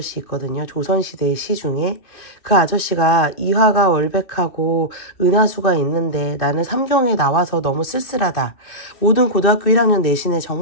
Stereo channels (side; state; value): right; late; 2.5 ms